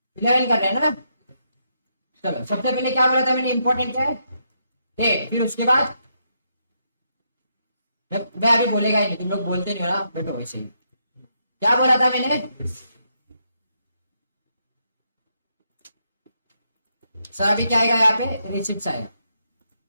11 कर रहे हैं ना। चलो सबसे पहले क्या बोला था मैंने, इंपॉर्टेंट क्या है, डेट। फिर उसके बाद मैं अभी बोलेगा ही नहीं, तुम लोग बोलते नहीं हो ना, बैठो वैसे ही। क्या बोला था मैंने सर? अभी क्या आएगा यहाँ पे, रिसिप्ट आएगा,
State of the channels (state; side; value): inverted; both; correlation -0.79